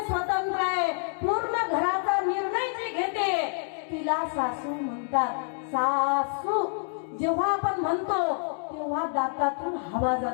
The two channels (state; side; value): silent; right; 60 dB below the other